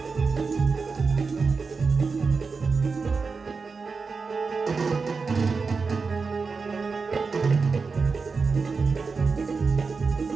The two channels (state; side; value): quieter; left; 4.7 dB